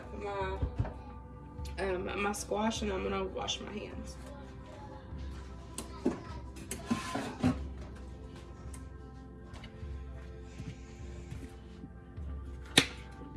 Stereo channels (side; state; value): both; identical; correlation 1.00